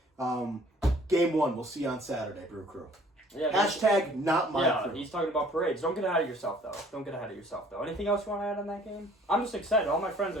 Game 1, we'll see you on Saturday, Brew Crew. Yeah, Hashtag not my crew. He's talking about parades. Don't get ahead of yourself, though. Anything else you want to add on that game? I'm just excited. All my friends are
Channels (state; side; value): normal; both; correlation 0.55